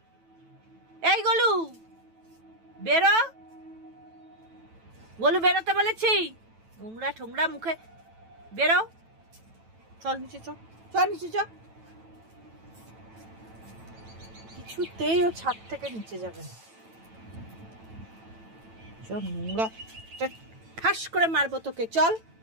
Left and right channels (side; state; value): left; late; 9.1 ms